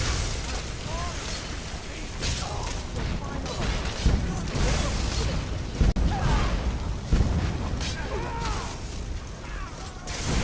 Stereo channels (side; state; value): both; identical; correlation 1.00